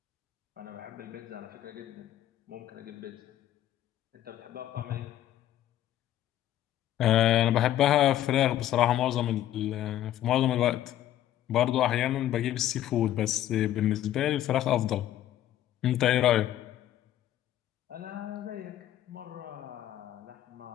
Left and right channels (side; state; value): right; quieter; 12.5 dB